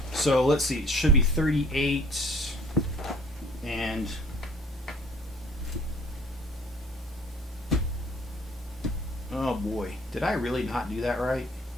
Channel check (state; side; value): normal; both; correlation 0.55